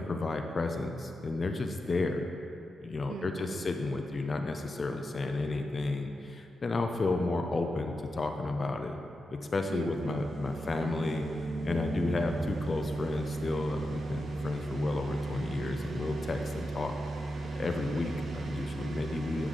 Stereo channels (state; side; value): normal; both; correlation 0.89